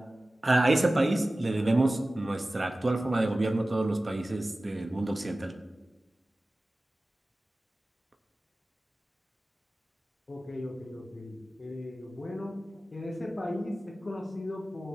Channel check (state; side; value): normal; both; correlation 0.97